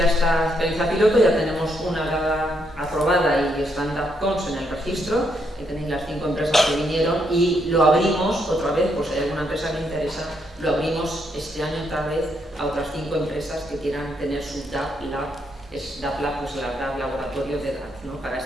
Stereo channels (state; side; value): normal; both; correlation 0.76